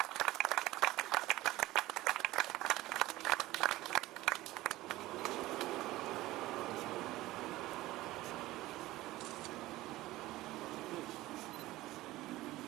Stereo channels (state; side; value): quieter; left; 17.4 dB